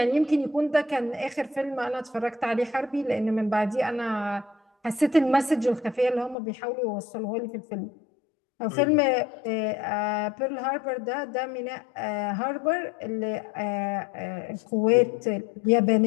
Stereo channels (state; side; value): drops out; right; at 6.4 s